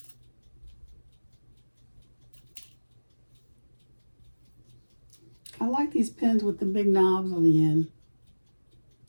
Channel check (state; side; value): inverted; both; correlation -1.00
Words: I like these pins with the big knobs on the end